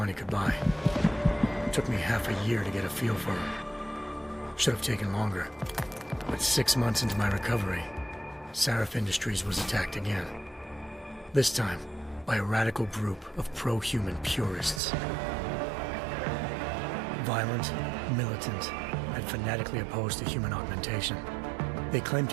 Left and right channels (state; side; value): drops out; left; at 14.8 s